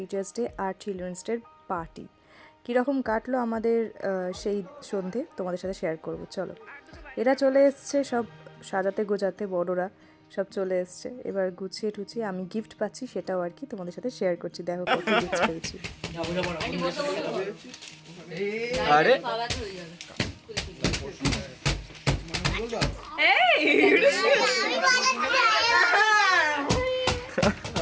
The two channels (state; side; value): identical; both; correlation 1.00